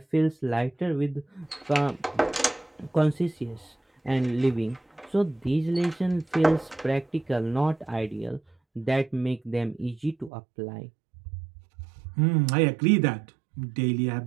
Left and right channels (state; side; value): drops out; left; at 10.3 s